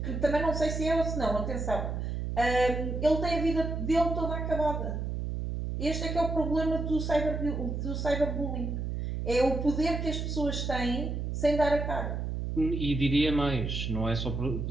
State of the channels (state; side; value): noise; right; hum, 3 dB below the sound